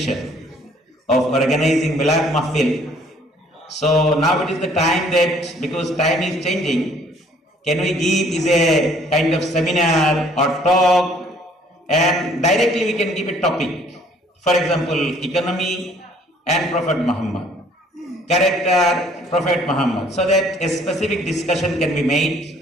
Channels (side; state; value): both; normal; correlation 0.59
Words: of organizing Milad Mahfil. So now it is the time that, because time is changing, can we give is a kind of seminar or talk, and directly we can give a topic. For example, economy and Prophet Muhammad, character Prophet Muhammad, so that a specific discussion can be made.